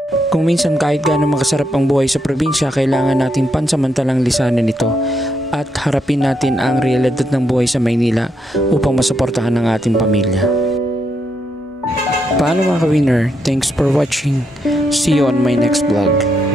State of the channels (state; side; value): normal; both; correlation 0.79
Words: Kung minsan kahit gaano makasarap ang buhay sa probinsya, kailangan natin pansamantalang lisanin ito at harapin natin ang realidad ng buhay sa Maynila upang masuportahan ang ating pamilya. Paano mga ka-winner? Thanks for watching. See you on my next vlog.